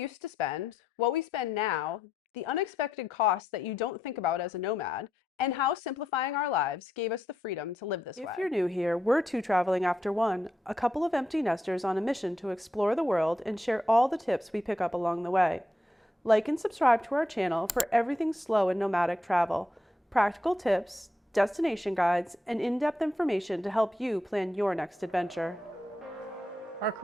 to spend, what we spend now, the unexpected costs that you don't think about as a nomad, and how simplifying our lives gave us the freedom to live this If you're way. new here, we're two traveling after one, a couple of empty nesters on a mission to explore the world and share all the tips we pick up along the way. Like and subscribe to our channel for everything slow and nomadic travel, practical tips, destination guides, and in-depth information to help you plan your next adventure. Our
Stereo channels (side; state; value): both; normal; correlation 0.82